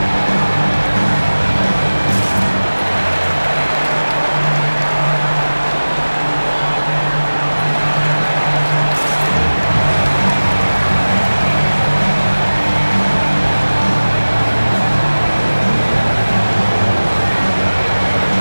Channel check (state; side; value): inverted; both; correlation -1.00